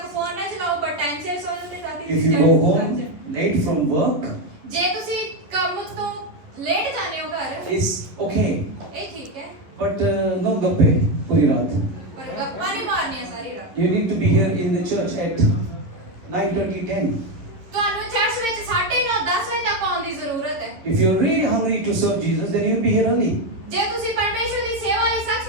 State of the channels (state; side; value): late; left; 11 ms